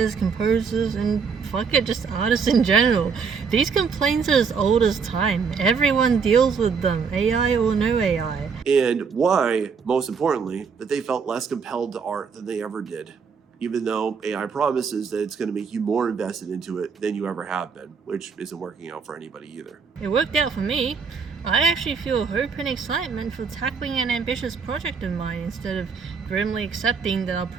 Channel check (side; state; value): left; quieter; 5.7 dB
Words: composers, and fuck it, just artists in general. These complaints are as old as time. Everyone deals with them, AI or no AI. And why, most importantly, that they felt less compelled to art than they ever did, even though AI promises that it's going to make you more invested into it than you ever have been, which isn't working out for anybody either. It worked out for me. I actually feel hope and excitement for tackling an ambitious project of mine instead of grimly accepting that I'll